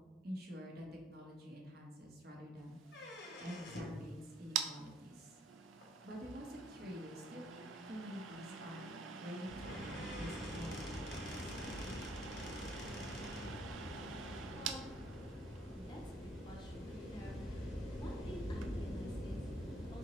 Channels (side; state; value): both; normal; correlation 0.65